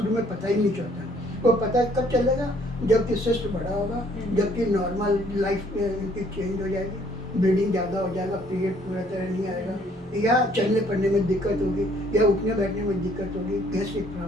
में पता ही नहीं चलता। वो पता कब चलेगा? जबकि सिस्ट बड़ा होगा, जबकि नॉर्मल लाइफ इनकी चेंज हो जाएगी, ब्लीडिंग ज़्यादा हो जाएगा, पीरियड पूरा तरह नहीं आएगा, या चलने फिरने में दिक्कत होगी, या उठने बैठने में दिक्कत होगी, गैस्ट्रिक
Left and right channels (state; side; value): normal; both; correlation 0.62